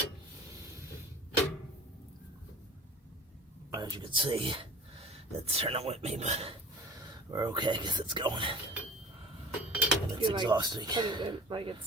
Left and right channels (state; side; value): normal; both; correlation 0.42